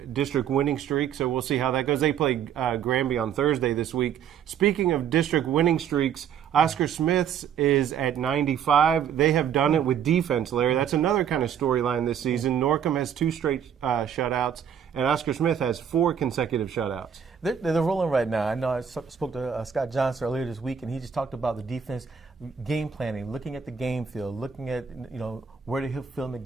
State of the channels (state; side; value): quieter; left; 8.1 dB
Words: district winning streak, so we'll see how that goes. They play Granby on Thursday this week. Speaking of district winning streaks, Oscar Smith's is at 95. They have done it with defense, Larry. That's another kind of storyline this season. Norcom has 2 straight shutouts, and Oscar Smith has 4 consecutive shutouts. They're rolling right now. I know I spoke to Scott Johnson earlier this week, and he just talked about the defense game planning, looking at the game field, looking at, you know, where to fill in the